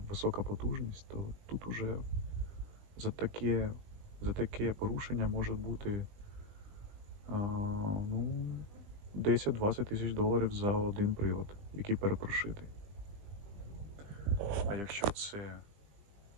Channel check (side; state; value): left; late; 20 ms